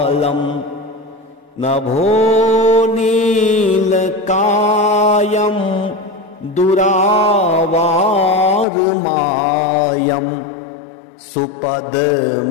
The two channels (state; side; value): drops out; right; at 8.7 s